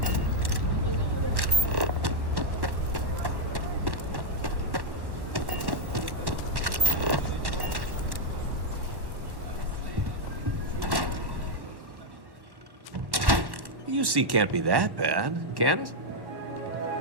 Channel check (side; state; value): left; late; 1.1 ms